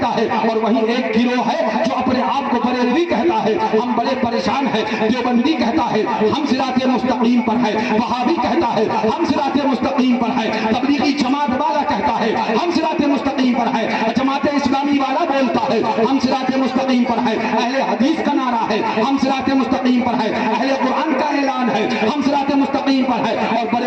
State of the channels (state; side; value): identical; both; correlation 1.00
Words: ہے، اور وہیں ایک گروہ ہے جو اپنے آپ کو بریلوی کہتا ہے۔ ہم بڑے پریشان ہیں۔ دیوبندی کہتا ہے ہم صراط مستقیم پر ہے، وہابی کہتا ہے ہم صراط مستقیم پر ہے، تبلیغی جماعت والا کہتا ہے ہم صراط مستقیم پر ہے، جماعت اسلامی والا بولتا ہے ہم صراط مستقیم پر ہے، اہل حدیث کا نعرہ ہے ہم صراط مستقیم پر ہے، اہل قرآن کا اعلان ہے ہم صراط مستقیم پر ہے، اور